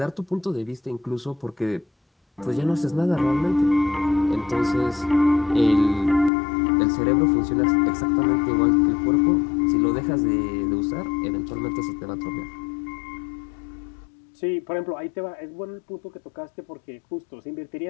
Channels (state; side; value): drops out; right; at 6.3 s